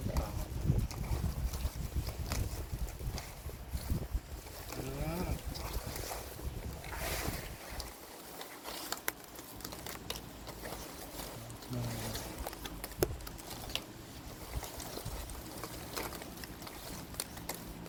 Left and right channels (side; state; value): both; identical; correlation 1.00